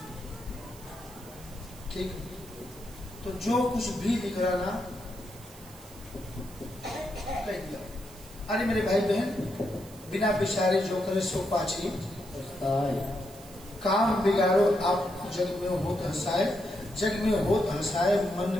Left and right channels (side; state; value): right; noise; hiss, 20 dB below the sound